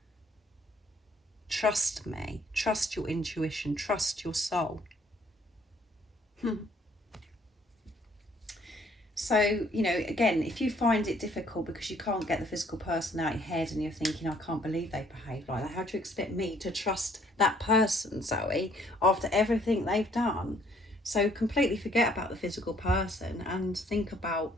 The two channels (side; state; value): both; normal; correlation 0.63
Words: Trust me, trust your intuition, trust your soul. So, again, if you find it difficult because you can't get the physical person out of your head and you're thinking, I can't believe they behave like that, how do you expect me to trust that person, Zoe, after everything they've done? So completely forget about the physical person and think about